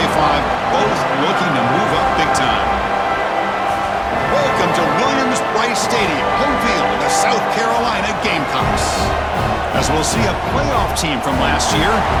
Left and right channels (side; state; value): both; identical; correlation 1.00